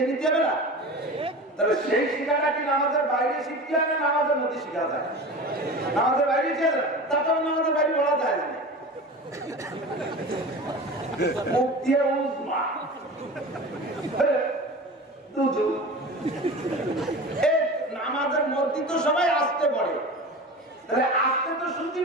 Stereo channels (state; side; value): normal; both; correlation 0.33